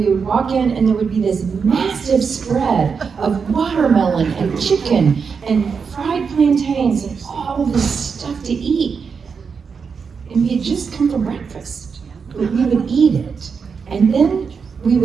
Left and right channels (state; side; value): quieter; left; 5.8 dB